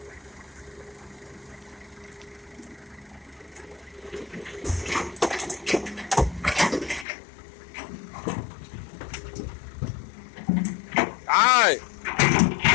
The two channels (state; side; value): drops out; right; at 7.1 s